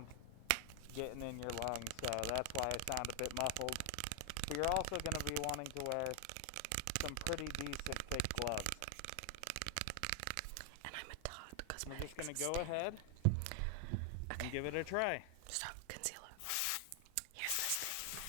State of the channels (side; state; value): both; different; correlation 0.00